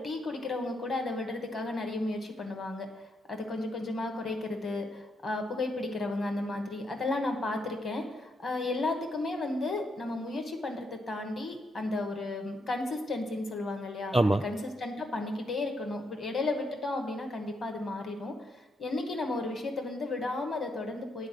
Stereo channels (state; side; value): normal; both; correlation 0.78